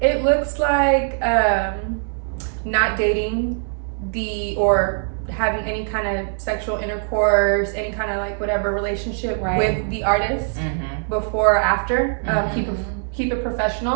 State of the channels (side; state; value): left; silent; 65 dB below the other